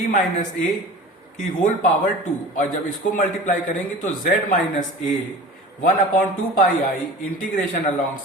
minus a की होल पावर 2, और जब इसको मल्टीप्लाई करेंगे तो z minus a 1/2 pi integration along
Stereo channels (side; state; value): both; normal; correlation 0.38